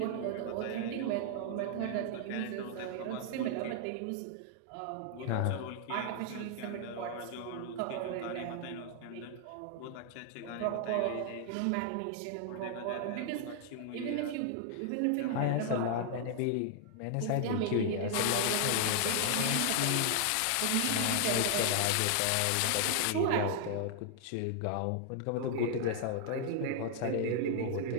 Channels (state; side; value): different; both; correlation 0.00